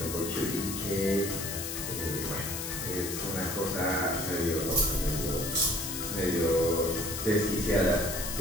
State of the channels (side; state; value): left; noise; hiss, 5 dB below the sound